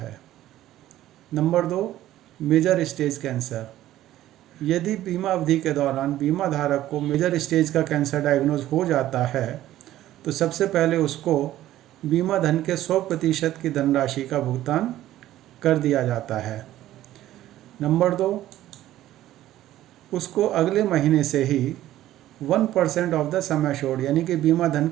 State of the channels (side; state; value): left; quieter; 13.9 dB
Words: नंबर 2, मेजर स्टेज कैंसर, यदि बीमा अवधि के दौरान बीमा धारक को मेजर स्टेज का कैंसर डायग्नोज हो जाता है तो सबसे पहले उसको बीमा धन के 100% की धनराशि का भुगतान कर दिया जाता है। नंबर 2, उसको अगले महीने से ही 1% ऑफ द सम एश्योर्ड, यानी कि बीमा धन